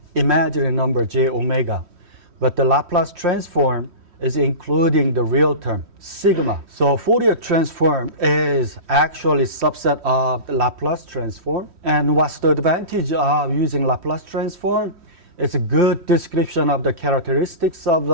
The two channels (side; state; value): left; late; 3.1 ms